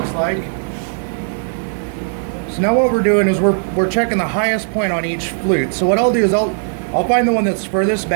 like. So now what we're doing is we're checking the highest point on each flute. So what I'll do is I'll find the one that's furthest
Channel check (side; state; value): left; silent; digital silence